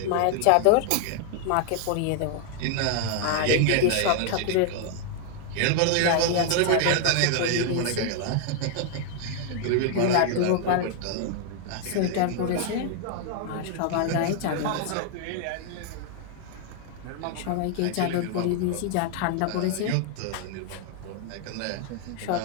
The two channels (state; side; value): different; both; correlation 0.00